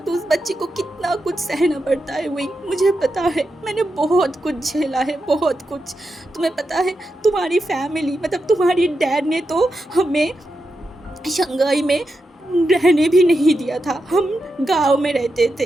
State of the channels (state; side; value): normal; both; correlation 0.87